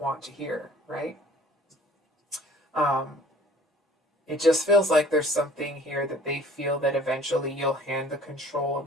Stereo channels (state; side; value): normal; both; correlation 0.52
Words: to hear, right? It just feels like there's something here that they feel that eventually you'll hand the control